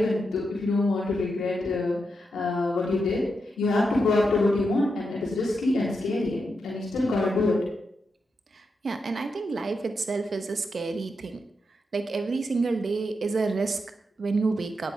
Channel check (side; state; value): both; normal; correlation 0.85